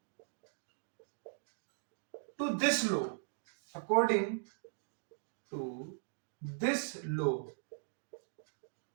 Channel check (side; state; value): left; silent; digital silence